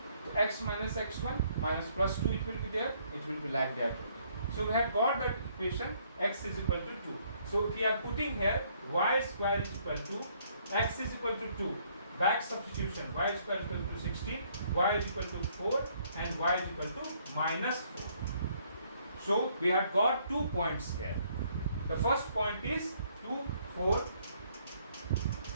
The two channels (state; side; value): inverted; both; correlation -0.66